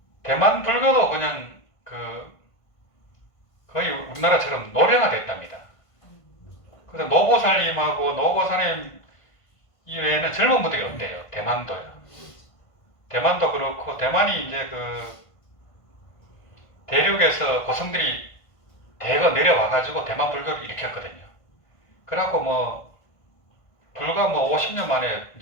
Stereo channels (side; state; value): right; late; 1.5 ms